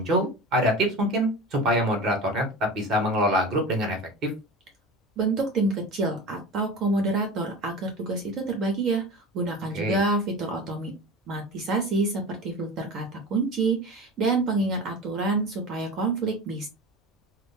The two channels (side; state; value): both; normal; correlation 0.32